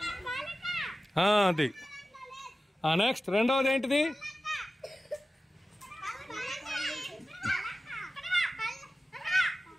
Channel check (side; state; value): both; normal; correlation 0.95